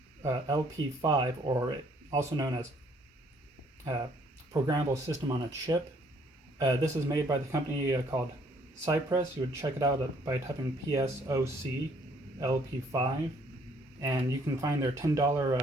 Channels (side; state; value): both; normal; correlation 0.63